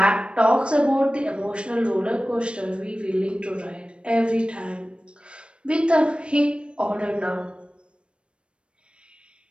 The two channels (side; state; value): left; late; 0.058 ms